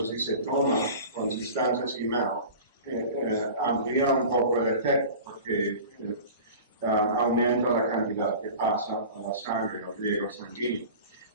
si se toma con sustancias y MAO, amplía un poco el efecto porque aumenta la cantidad que pasa a la sangre o riego sanguíneo.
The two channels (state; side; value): inverted; both; correlation -0.38